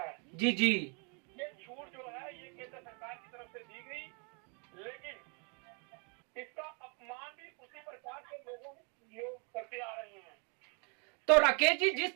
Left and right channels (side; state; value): left; quieter; 36.1 dB